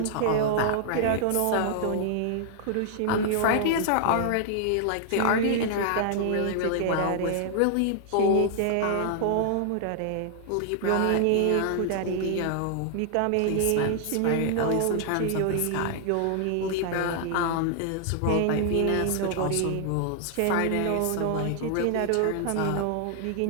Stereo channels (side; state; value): both; different; correlation 0.00